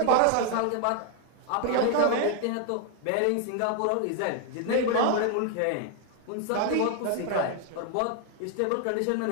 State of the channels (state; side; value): different; both; correlation 0.00